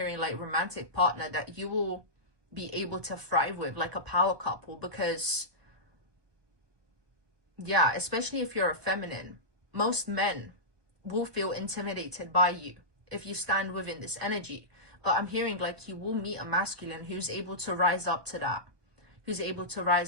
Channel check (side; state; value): left; late; 1.2 ms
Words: like romantic partner that you will be able to thrive with, like a power couple. Because yeah, especially if you're a feminine, most men will feel intimidated by you if you stand within this energy. But I'm hearing like you will meet a masculine who's able to rise up to that, who's able to